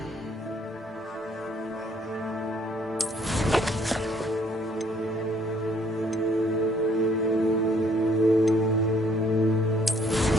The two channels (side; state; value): both; normal; correlation 0.64